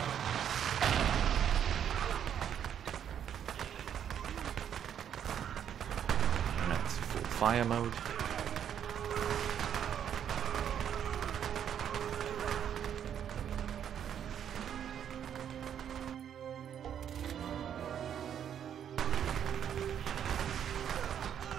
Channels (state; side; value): quieter; left; 9.1 dB